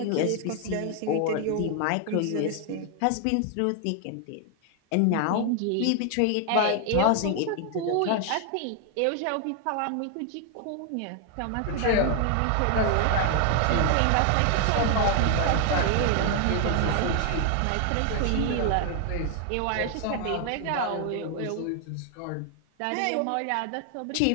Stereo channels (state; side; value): different; both; correlation 0.00